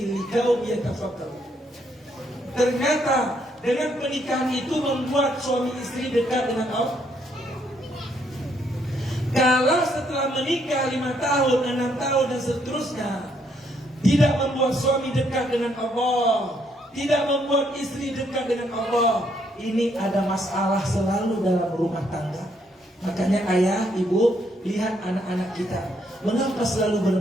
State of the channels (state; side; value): normal; both; correlation 0.72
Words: liqaumin yatafakkarun. Ternyata dengan pernikahan itu membuat suami istri dekat dengan Allah. Kalau setelah menikah 5 tahun, 6 tahun dan seterusnya tidak membuat suami dekat dengan Allah, tidak membuat istri dekat dengan Allah, ini ada masalah selalu dalam rumah tangga. Makanya ayah, ibu, lihat anak-anak kita, mengapa selalu